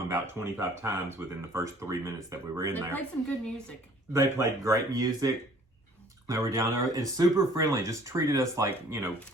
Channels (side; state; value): both; normal; correlation 0.54